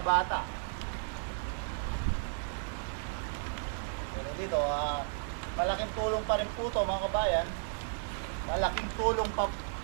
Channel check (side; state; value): left; silent; 55 dB below the other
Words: bata. Pero dito, malaking tulong pa rin po ito mga kabayan. Malaking tulong